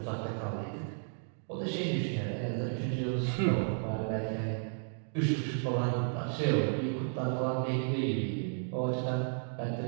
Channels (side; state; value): left; silent; digital silence